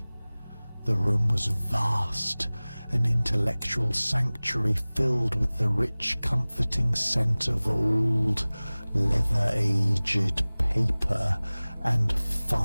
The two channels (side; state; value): both; inverted; correlation -0.99